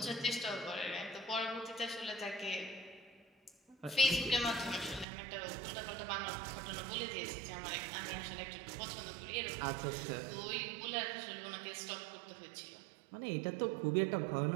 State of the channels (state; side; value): drops out; left; at 5.1 s